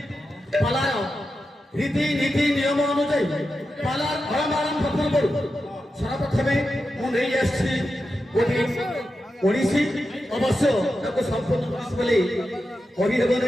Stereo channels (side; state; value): both; normal; correlation 0.90